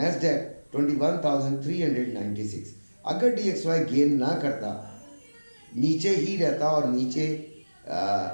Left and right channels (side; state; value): both; inverted; correlation -1.00